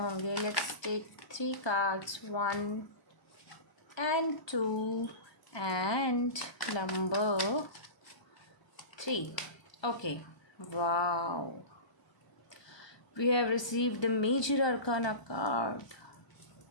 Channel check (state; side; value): late; right; 1.0 ms